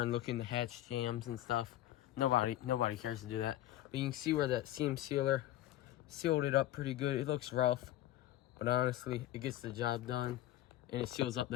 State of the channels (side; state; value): right; quieter; 14.0 dB